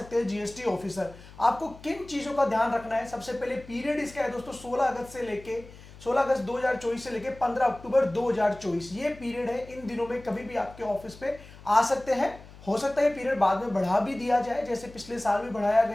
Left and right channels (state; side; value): noise; left; hum, 19 dB below the sound